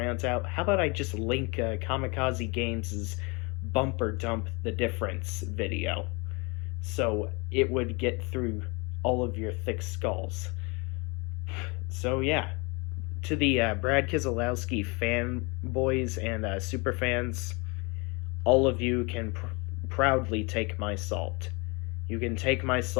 out, how about I just link Kamikaze Games' Bumper Dump the Difference video, so it would get through all of your thick skulls. So yeah, to the Brad Keselowski fanboys and super fans, all of you can proudly take my salt. You can take my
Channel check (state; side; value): quieter; right; 29.0 dB